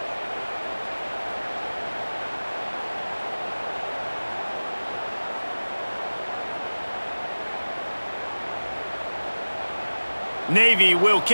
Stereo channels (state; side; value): inverted; both; correlation -1.00